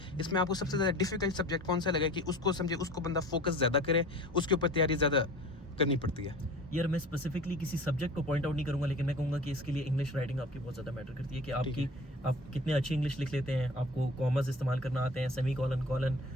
इसमें आपको सबसे ज़्यादा डिफिकल्ट सब्जेक्ट कौन सा लगा है कि उसको समझे, उसको बंदा फोकस ज़्यादा करे, उसके ऊपर तैयारी ज़्यादा करनी पड़ती है? यार मैं स्पेसिफिकली किसी सब्जेक्ट को पॉइंट आउट नहीं करूंगा, लेकिन मैं कहूँगा कि इसके लिए इंग्लिश राइटिंग आपकी बहुत ज़्यादा मैटर करती है, कि आप कितने अच्छी इंग्लिश लिख लेते हैं, आपको कॉमर्स इस्तेमाल करना आते हैं, सेमी कॉलन,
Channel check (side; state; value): both; normal; correlation 0.41